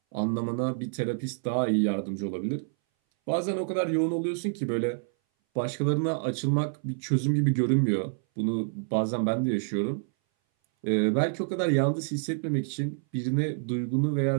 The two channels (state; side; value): silent; left; 58 dB below the other